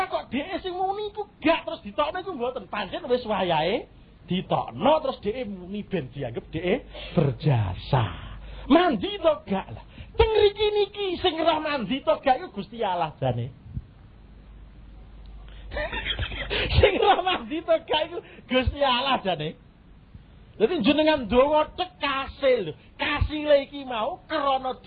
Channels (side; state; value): both; identical; correlation 1.00